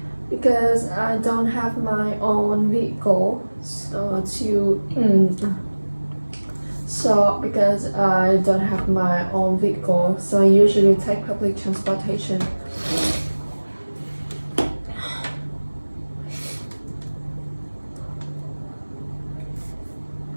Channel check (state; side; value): inverted; both; correlation -1.00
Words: because I don't have my own vehicle. Because I don't have my own vehicle, so I usually take public transportation.